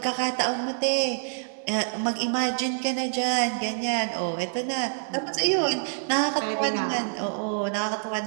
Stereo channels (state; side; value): silent; left; 60 dB below the other